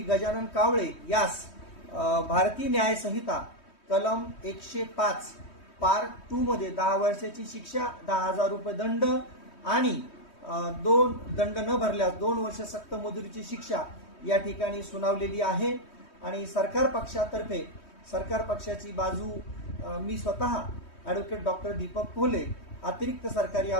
गजानन कावळे यास भारतीय न्याय संहिता कलम 105 पार्ट 2 मध्ये 10 वर्षाची शिक्षा, 10,000 रुपये दंड आणि दंड न भरल्यास 2 वर्ष सक्त मजुरीची शिक्षा या ठिकाणी सुनावलेली आहे। आणि सरकार पक्षाची बाजू मी स्वतः ॲडव्होकेट डॉक्टर दीपक कोल्हे अतिरिक्त सरकारी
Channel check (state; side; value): late; right; 3.2 ms